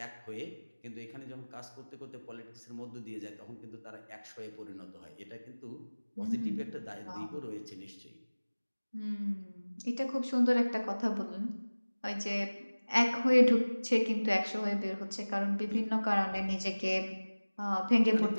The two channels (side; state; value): both; inverted; correlation -1.00